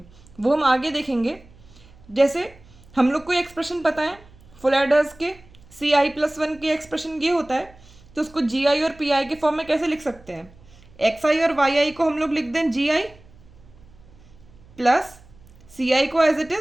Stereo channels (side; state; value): right; noise; hum, 25 dB below the sound